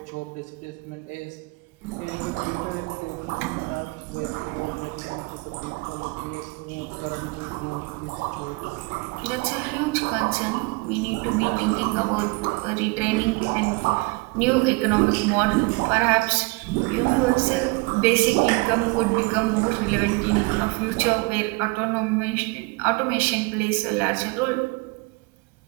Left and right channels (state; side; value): quieter; left; 26.9 dB